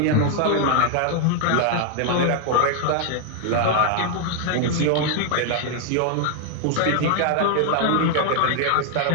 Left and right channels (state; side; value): different; both; correlation 0.00